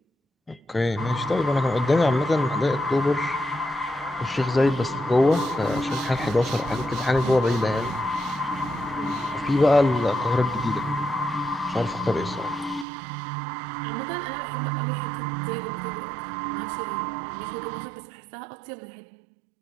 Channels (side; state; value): left; drops out; at 12.9 s